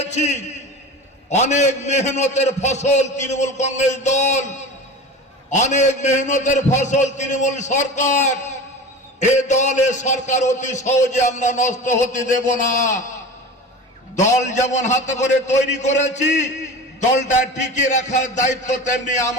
অনেক মেহনতের ফসল তৃণমূল কংগ্রেস দল, অনেক মেহনতের ফসল তৃণমূল সরকার। এ দল এ সরকার অতি সহজে আমরা নষ্ট হতে দেব না। দল যেমন হাতে করে তৈরি করেছি, দলটা টিকিয়ে রাখার দায়িত্ব তেমনি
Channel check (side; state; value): both; normal; correlation 0.33